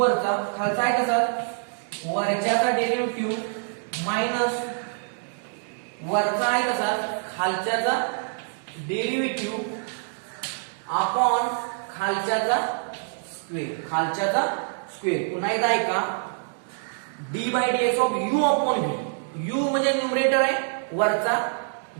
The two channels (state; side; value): silent; left; digital silence